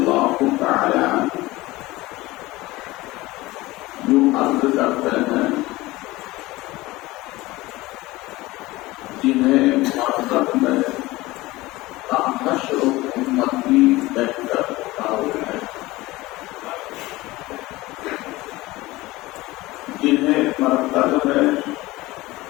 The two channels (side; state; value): right; quieter; 19.7 dB